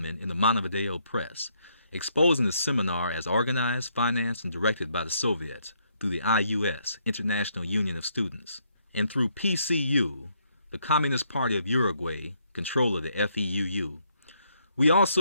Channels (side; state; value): both; inverted; correlation -0.73